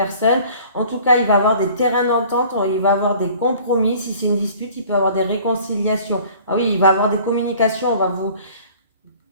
En tout cas, il va y avoir des terrains d'entente, il va y avoir des compromis. Si c'est une dispute, il peut y avoir des réconciliations. Ah oui, il va y avoir des communications,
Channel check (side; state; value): both; inverted; correlation -0.49